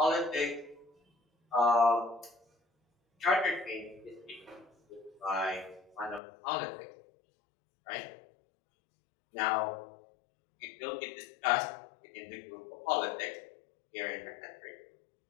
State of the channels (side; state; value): right; drops out; at 6.2 s